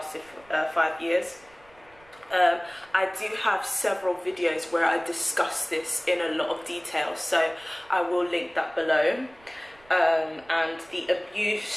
for 5 years. I do have several videos where I discuss this in a lot of detail, so I will link that below. And the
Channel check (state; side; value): noise; right; rumble, 28 dB below the sound